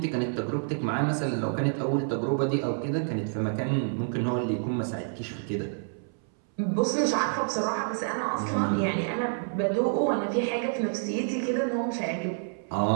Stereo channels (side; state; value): left; silent; 59 dB below the other